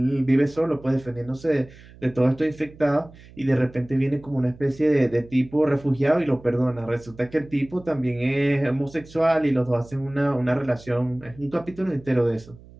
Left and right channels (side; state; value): right; noise; hum, 22 dB below the sound